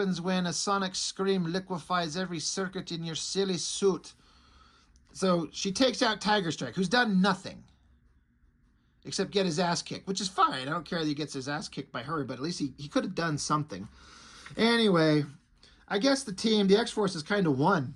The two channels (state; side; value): identical; both; correlation 1.00